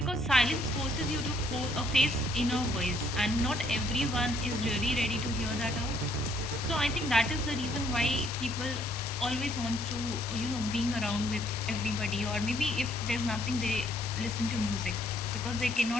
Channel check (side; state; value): both; normal; correlation 0.67